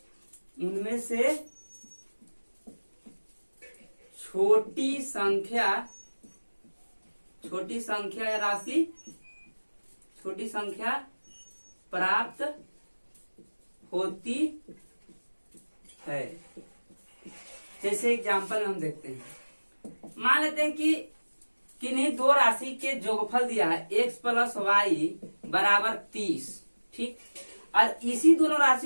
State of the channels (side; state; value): both; inverted; correlation -1.00